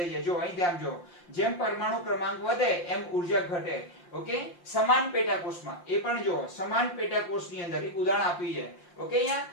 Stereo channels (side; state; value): right; late; 5.7 ms